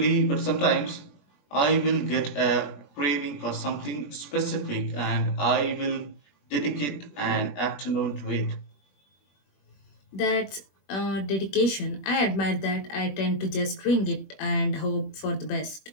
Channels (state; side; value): late; right; 21 ms